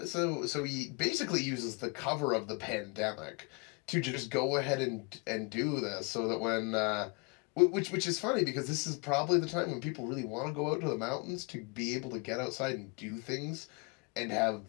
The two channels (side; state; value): right; quieter; 31.2 dB